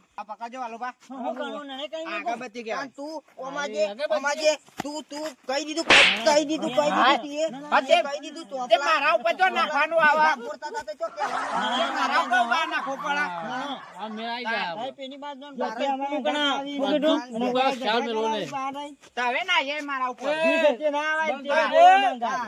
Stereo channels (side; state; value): both; identical; correlation 1.00